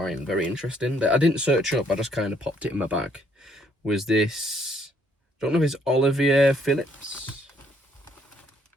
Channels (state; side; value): normal; both; correlation 0.67